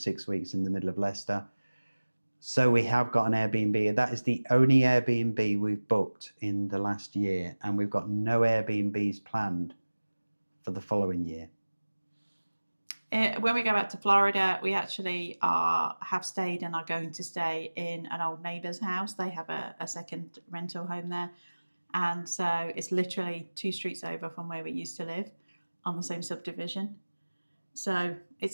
weeks in the middle of Leicester. So we have got an Airbnb. That is the only Airbnb we've booked in the last year, and we've got no Airbnbs planned for the following year. When we go back to Florida, we actually have stayed and are going to stay in an old neighbour's house. They have a second rental home there. And so it's literally 2 streets over from where we used to live on the same subdivision. So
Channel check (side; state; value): both; inverted; correlation -1.00